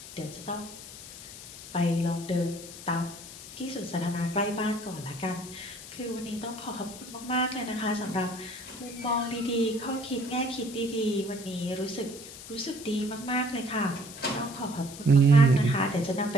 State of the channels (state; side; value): noise; left; hiss, 14 dB below the sound